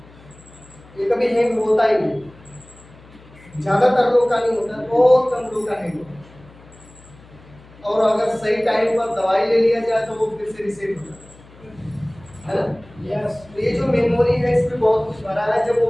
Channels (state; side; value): noise; left; hum, 24 dB below the sound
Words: ये कभी हैंग होता ही नहीं। ज्यादातर लोग का नहीं होता, बहुत कम लोग का हैंग होता। और अगर सही टाइम पर दवाई ले लिया जाए तो वो फिर से रिसेट होता है ना? यस। तो ये जो मेमोरी है इसमें बहुत कुछ भरा है। जब वो